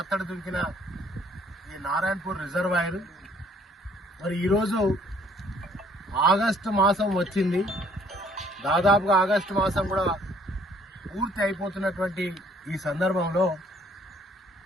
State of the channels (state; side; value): normal; both; correlation 0.60